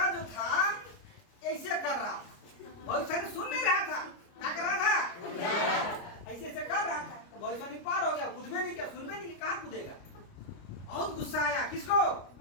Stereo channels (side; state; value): right; late; 29 ms